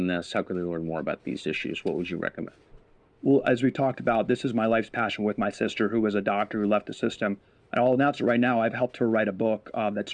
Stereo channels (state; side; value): identical; both; correlation 1.00